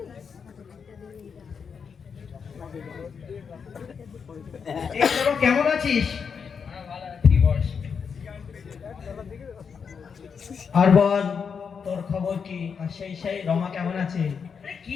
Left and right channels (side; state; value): right; quieter; 6.3 dB